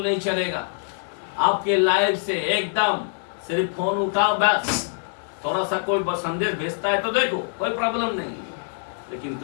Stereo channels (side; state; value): right; silent; digital silence